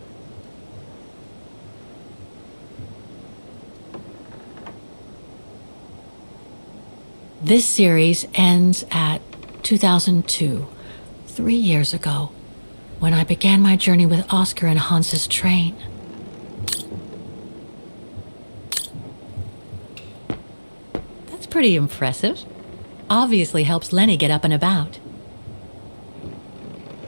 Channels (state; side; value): inverted; both; correlation -1.00